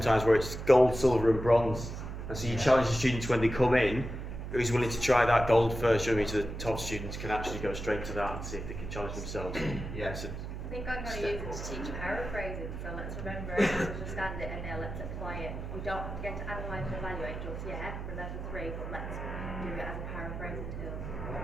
where it's gold, silver and bronze, and so you challenge the students when they come in, who's willing to try that gold first, you know what I mean, so the top students can actually go straight to that and see if they can challenge themselves. Yeah. So, I think think I'm going to use it to teach paraphrasing, so let's remember it, let's understand it, and now let's apply it. We don't have to get to analyse and evaluate just yet for level 3, but let's do it as a paraphrasing tool to teach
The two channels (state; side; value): noise; right; hum, 7 dB below the sound